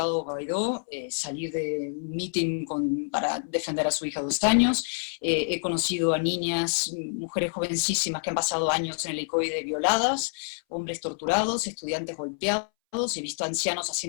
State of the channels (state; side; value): silent; right; 60 dB below the other